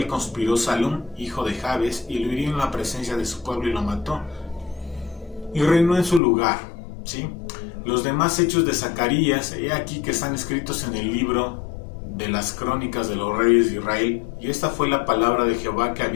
conspiró Salum, hijo de Jabes, y lo hirió en la presencia de su pueblo y lo mató. Y reinó en su lugar, ¿sí? Los demás hechos de Zacarías, he aquí que están escritos en el libro de las crónicas de los reyes de Israel. Y esta fue la palabra de Jehová que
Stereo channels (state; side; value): drops out; right; at 6.2 s